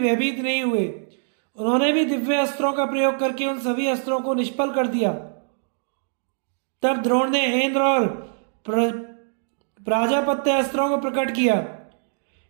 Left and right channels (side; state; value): left; silent; digital silence